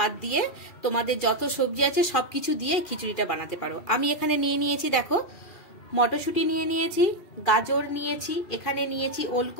দিয়ে তোমাদের যত সবজি আছে সবকিছু দিয়ে খিচুড়িটা বানাতে পারো। আমি এখানে নিয়েছি দেখো, মটরশুঁটি নিয়েছি, গাজর নিয়েছি, এখানে নিয়েছি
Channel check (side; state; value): right; late; 2.7 ms